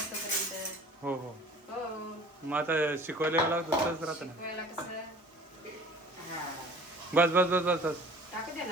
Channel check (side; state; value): both; normal; correlation 0.46